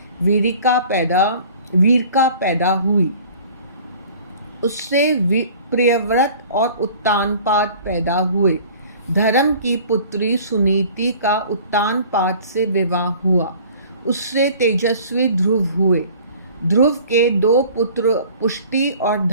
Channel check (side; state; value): both; inverted; correlation -0.48